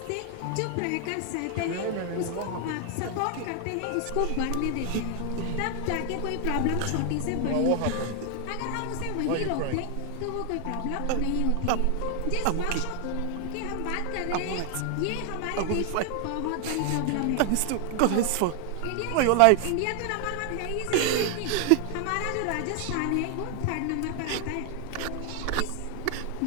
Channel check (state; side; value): different; both; correlation 0.00